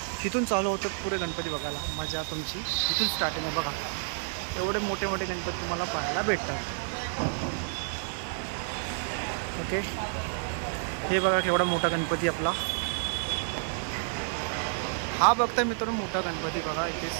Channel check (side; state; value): left; silent; 58 dB below the other